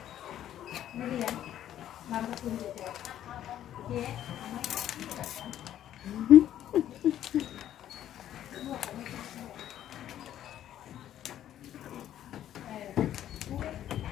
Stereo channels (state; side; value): quieter; right; 11.5 dB